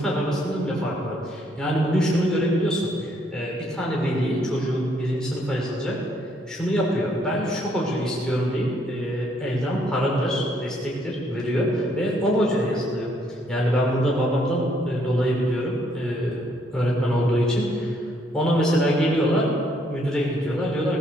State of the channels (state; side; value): normal; both; correlation 0.69